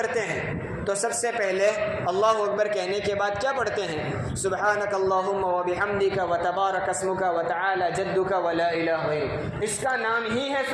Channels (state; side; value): identical; both; correlation 1.00